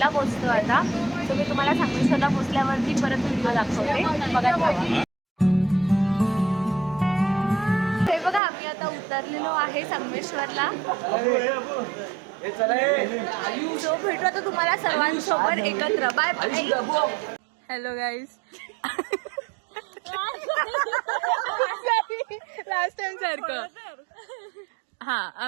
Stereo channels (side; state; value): left; drops out; at 8.4 s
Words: पोचतो आता. सो मी तुम्हाला संगमेश्वरला पोचल्यावरती परत व्हिडिओ दाखवते. बघा. हे बघा, आम्ही आता उतरलेलो आहे संगमेश्वरला. सो भेटू आता तुम्हाला सर्वांसोबत एकत्र. Bye bye. Hello guys. Last time सारखं. हा,